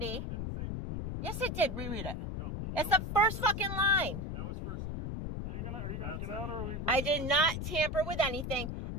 It didn't say public. Yes, it did. Reread it. No. It's That the was first fucking line. That was first degree. Are you gonna get out or are we breaking I the did window? not tamper with anything.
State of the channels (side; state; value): left; noise; rumble, 4 dB below the sound